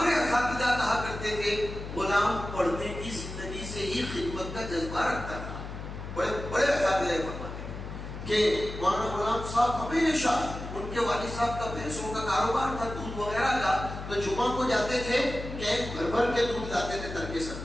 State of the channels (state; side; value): noise; left; hum, 9 dB below the sound